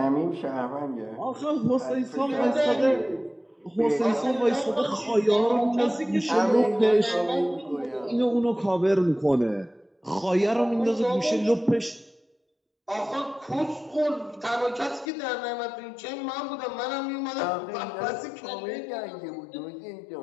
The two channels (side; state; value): right; drops out; at 15.1 s